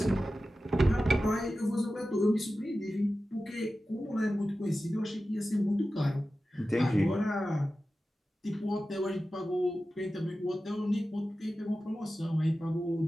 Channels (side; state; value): both; normal; correlation 0.94